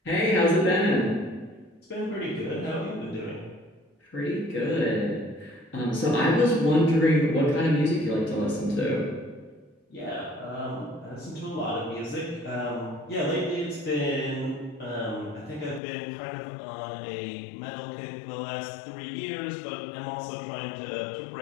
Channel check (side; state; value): right; drops out; at 15.8 s